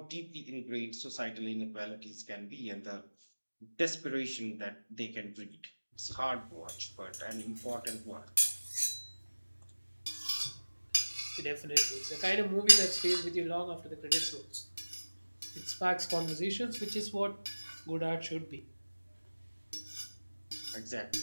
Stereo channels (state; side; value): inverted; both; correlation -1.00